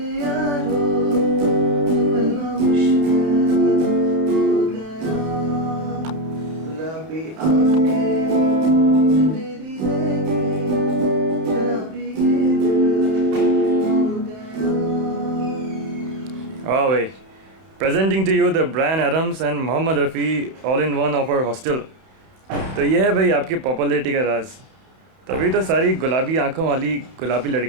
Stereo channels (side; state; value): left; late; 31 ms